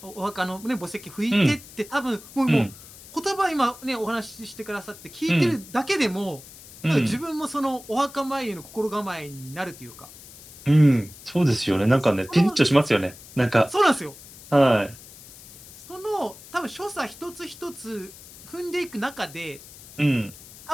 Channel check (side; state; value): left; noise; hiss, 18 dB below the sound